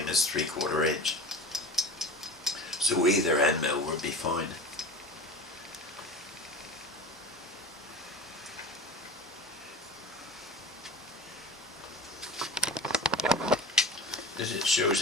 as 3/4 inch. So either end mill would be fine. This shows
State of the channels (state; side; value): normal; both; correlation 0.33